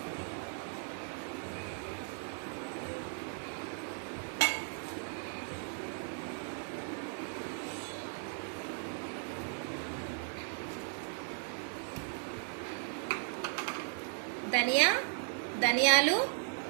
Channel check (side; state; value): left; silent; 53 dB below the other